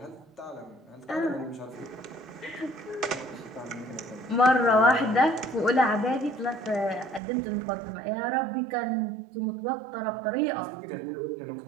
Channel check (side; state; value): left; drops out; at 7.2 s